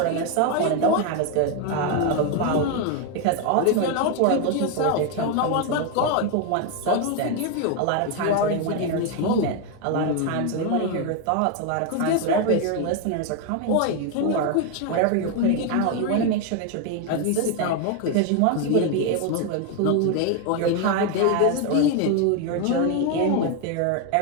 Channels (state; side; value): different; both; correlation 0.01